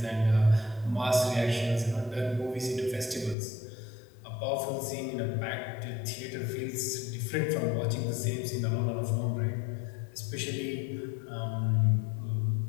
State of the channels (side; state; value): right; drops out; at 3.4 s